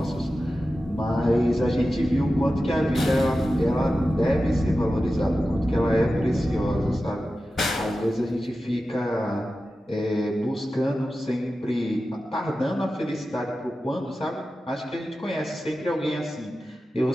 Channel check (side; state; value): both; normal; correlation 0.93